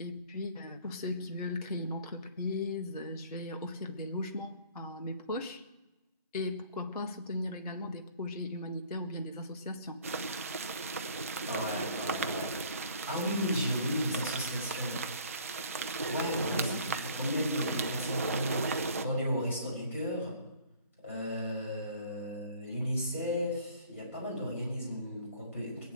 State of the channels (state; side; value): inverted; both; correlation -0.53